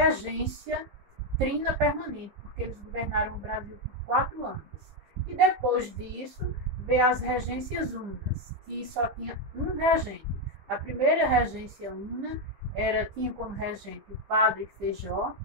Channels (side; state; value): left; late; 15 ms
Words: trina permanente, porque eles governaram o Brasil por 4 anos. E depois disso, veio as regências unas, que só tinha um regente. A primeira regência una tinha como regente o padre Feijó,